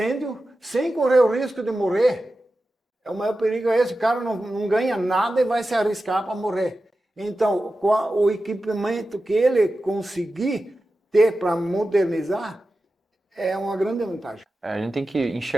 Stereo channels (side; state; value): both; normal; correlation 0.93